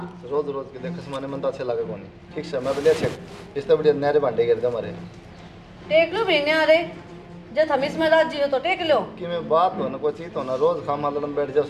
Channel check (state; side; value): identical; both; correlation 1.00